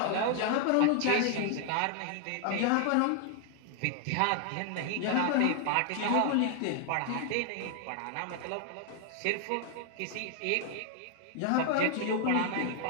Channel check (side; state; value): both; different; correlation 0.00